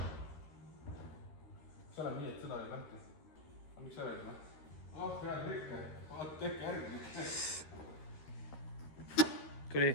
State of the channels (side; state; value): right; late; 13 ms